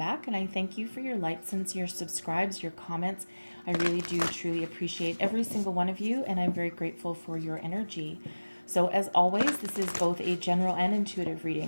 And I thank you for your likes and your subscribes, your comments. I really do truly appreciate every single one of you, and I'm very grateful for your energy. So as always, this is both a general and intuitive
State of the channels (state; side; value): inverted; both; correlation -1.00